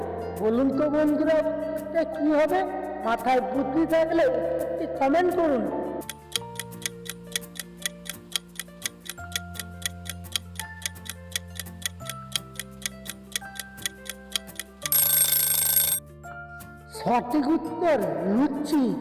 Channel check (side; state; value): both; identical; correlation 1.00